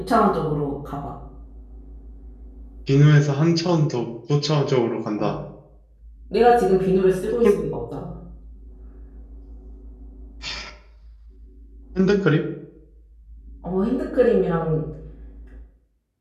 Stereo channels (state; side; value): identical; both; correlation 1.00